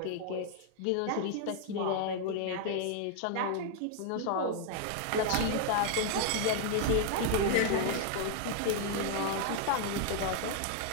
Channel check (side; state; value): both; different; correlation 0.00